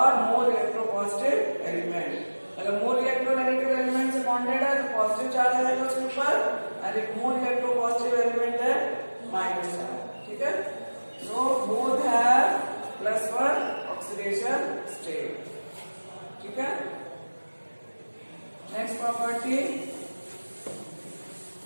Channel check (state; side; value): inverted; both; correlation -1.00